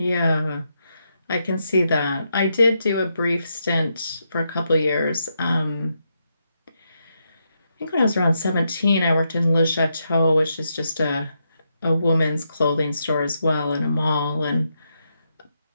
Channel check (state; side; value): inverted; both; correlation -0.82